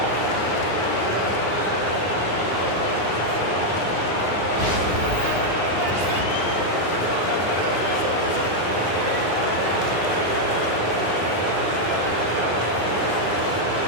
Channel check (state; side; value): late; right; 9.7 ms